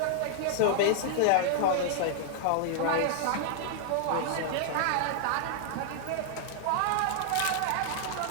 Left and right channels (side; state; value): both; different; correlation -0.01